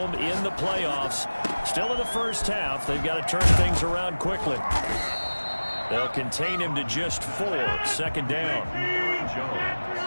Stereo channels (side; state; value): both; inverted; correlation -1.00